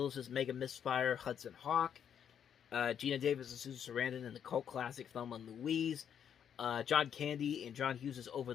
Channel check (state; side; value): quieter; right; 8.5 dB